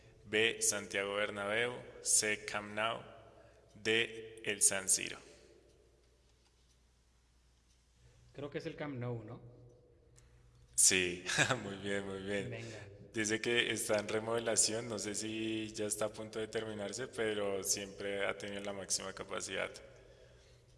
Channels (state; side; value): identical; both; correlation 1.00